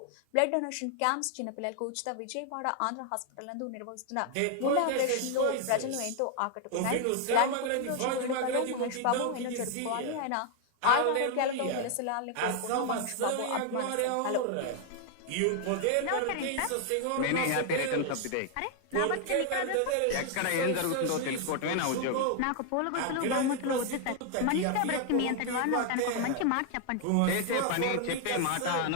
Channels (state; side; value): different; both; correlation 0.00